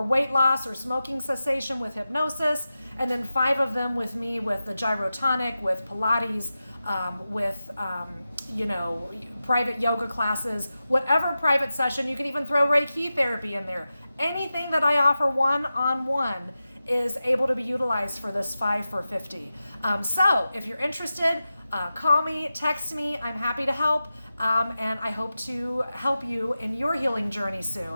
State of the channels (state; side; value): inverted; both; correlation -0.93